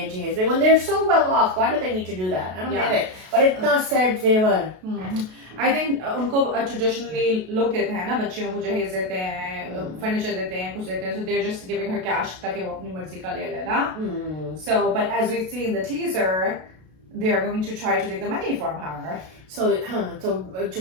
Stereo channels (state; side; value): late; left; 32 ms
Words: जहेज में. When they're so well off, why do they need to do that? I don't get it. But इतना sad जेवर. I think उनको traditionally लोग कहते हैं ना बच्चियों को जहेज देते हैं, furniture देते हैं, कुछ देते हैं, so they're just giving her cash ताकि वो अपनी मर्जी का ले ले ना. So, but as we see in the teaser, they are going to try to take the money from her. So